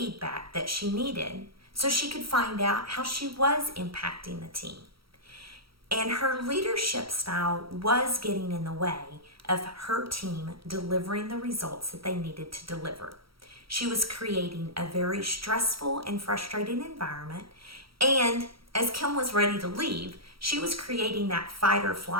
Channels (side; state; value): left; late; 0.75 ms